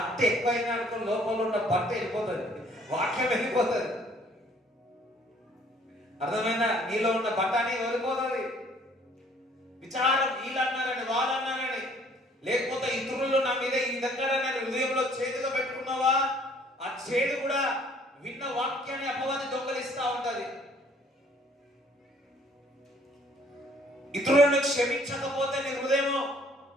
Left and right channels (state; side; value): normal; both; correlation 0.59